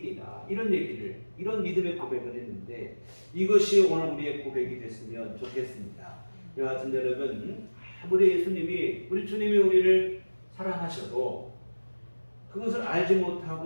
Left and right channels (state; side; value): inverted; both; correlation -1.00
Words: 이런 얘기를, 이런 믿음의 고백을 했는데, 이것이 오늘 우리의 고백이 됐으면 좋겠습니다. 여하튼 여러분, 아무리 예수님이, 우리 주님이 우리를 사랑하셔도 그것을 알지